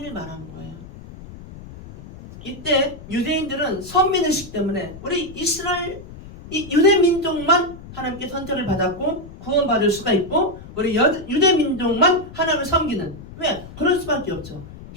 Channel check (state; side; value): noise; left; rumble, 16 dB below the sound